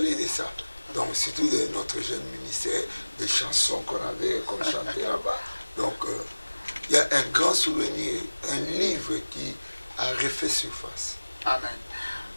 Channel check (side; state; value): both; inverted; correlation -1.00